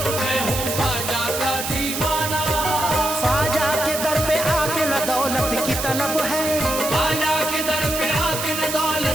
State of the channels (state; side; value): noise; right; hiss, 4 dB below the sound